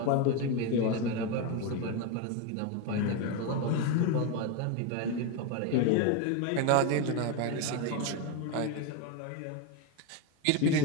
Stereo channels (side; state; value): both; different; correlation 0.02